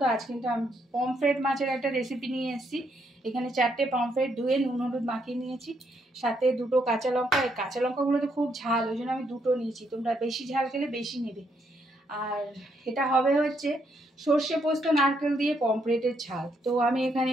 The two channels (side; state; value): both; normal; correlation 0.75